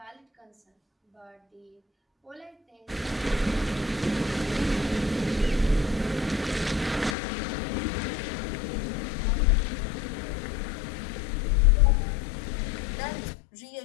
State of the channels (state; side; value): drops out; right; at 7.2 s